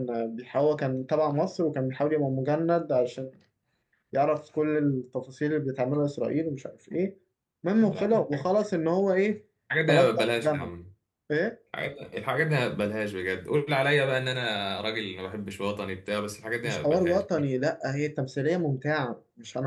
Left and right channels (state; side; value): identical; both; correlation 1.00